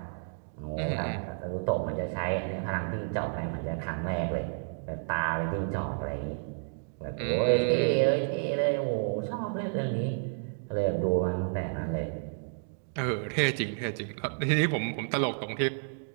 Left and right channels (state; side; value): silent; left; digital silence